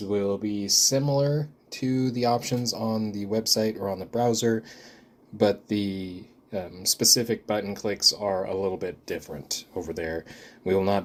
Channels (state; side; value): identical; both; correlation 1.00